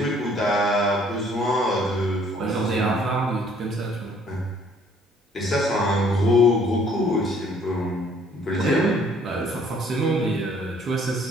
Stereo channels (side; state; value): both; normal; correlation 0.60